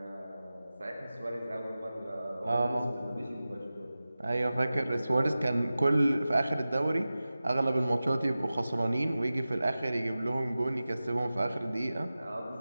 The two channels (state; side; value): inverted; both; correlation -0.95